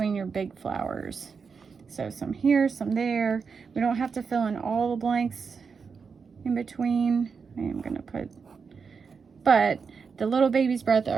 your big flowers. So some here, some there. We don't have to fill in all the blanks in between. I am gonna put, but the little baby's breath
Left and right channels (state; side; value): quieter; left; 5.6 dB